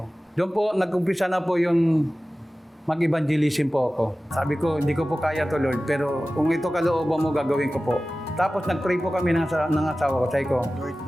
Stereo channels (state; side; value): normal; both; correlation 0.96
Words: Doon po, nag-umpisa na po yung mag-evangelism po ako. Sabi ko, hindi ko po kaya to, Lord, pero kung ito kalooban mo, gagawin ko po. Tapos nag-pray po kami ng asawa ko. Sabi ko,